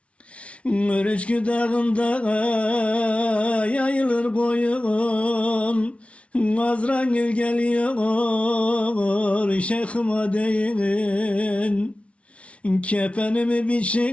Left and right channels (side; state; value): right; late; 0.062 ms